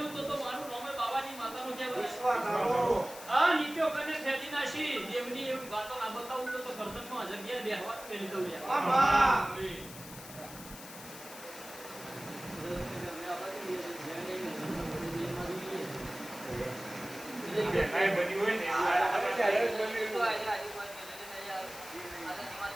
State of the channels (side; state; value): left; noise; hiss, 14 dB below the sound